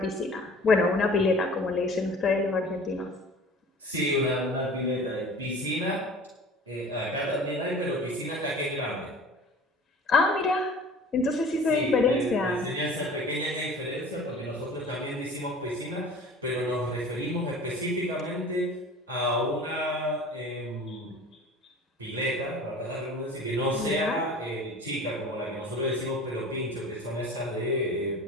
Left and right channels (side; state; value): both; normal; correlation 0.42